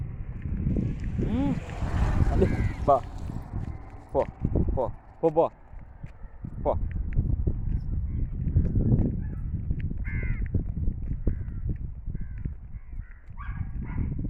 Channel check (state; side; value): identical; both; correlation 1.00